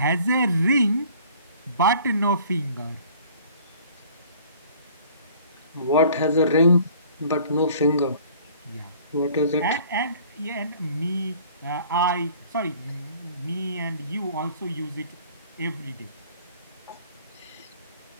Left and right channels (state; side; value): inverted; both; correlation -0.52